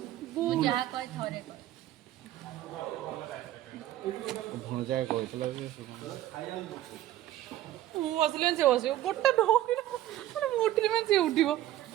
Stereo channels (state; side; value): quieter; left; 13.7 dB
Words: ଯାହା କହି ଥରେ କହ ଭଣଜା କହିଥିଲା ଯେ ମୁଁ ବସିଲେ ସେ ବସିବ ଗୋଟେ ଢୋକିଲା ମାନେ ମୁଁ ଉଠିଲି ମାନେ ସେ ଉଠିବ